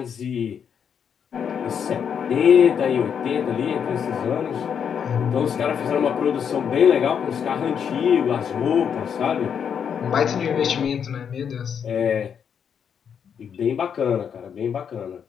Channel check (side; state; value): right; quieter; 7.6 dB